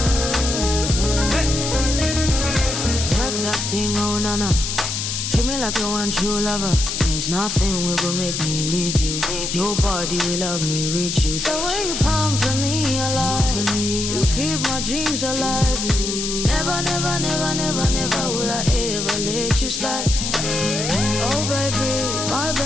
Work that thing, oh nana. Treat me like you want true lover. There's nothing will go make me leave you. Nobody will love me, reach you. The way you pumping me alive, you keep my dreams alive. Never, never, never, never, never will I ever let you slide. Oh baby, my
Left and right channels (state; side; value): noise; left; hiss, 3 dB below the sound